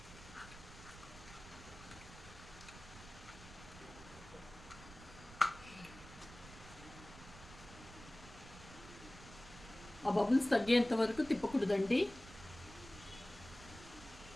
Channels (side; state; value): right; noise; rumble, 17 dB below the sound